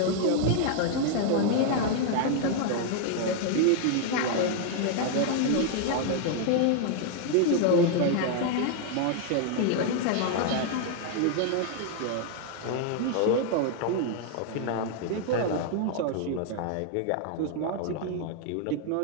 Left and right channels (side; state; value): both; different; correlation 0.00